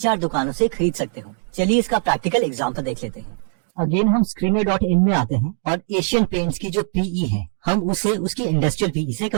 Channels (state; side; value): silent; left; 57 dB below the other